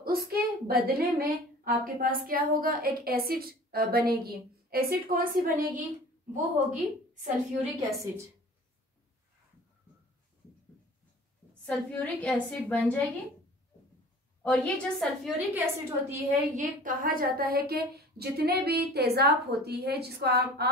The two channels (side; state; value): both; normal; correlation 0.44